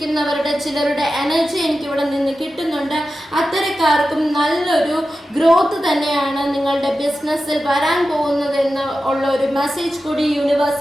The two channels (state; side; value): normal; both; correlation 0.93